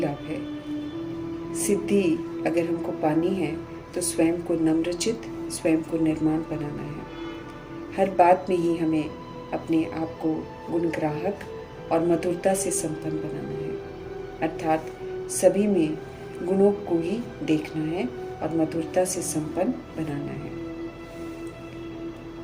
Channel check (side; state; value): both; identical; correlation 1.00